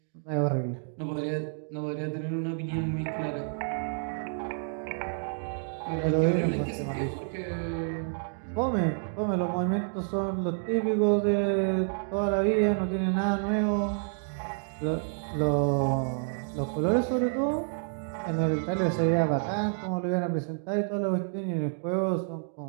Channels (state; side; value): silent; left; digital silence